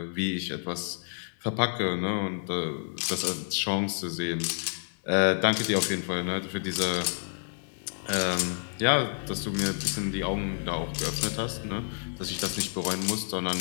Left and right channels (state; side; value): silent; right; digital silence